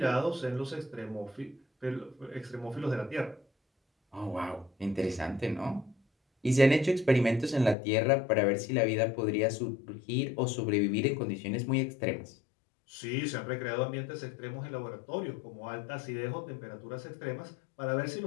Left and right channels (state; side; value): drops out; right; at 7.8 s